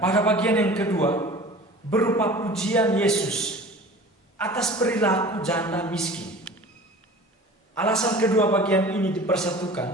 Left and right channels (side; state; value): both; normal; correlation 0.41